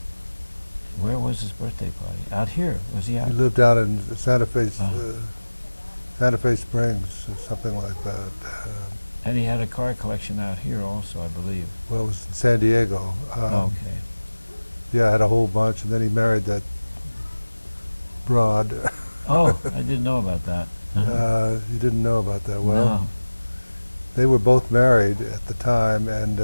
Where was his birthday party? Out here? Was he out? He lived down in Santa Fe, Oh. Santa Fe Springs, or something like that. And he had a car collection out here also, I believe. Well, it was in San Diego. Okay. Yeah, I had a whole bunch, and then he married that broad. Oh, I didn't know about that. You didn't know about that. Well, No. they were both married at the time, and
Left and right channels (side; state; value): both; inverted; correlation -1.00